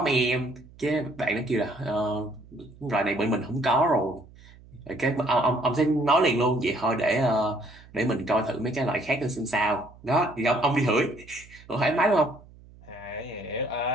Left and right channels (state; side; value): noise; right; hum, 23 dB below the sound